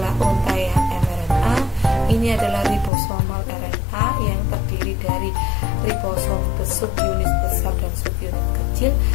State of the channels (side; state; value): right; drops out; at 2.9 s